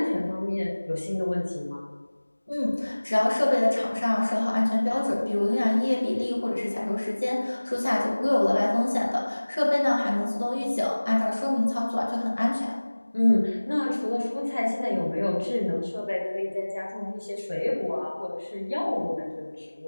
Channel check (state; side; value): inverted; both; correlation -1.00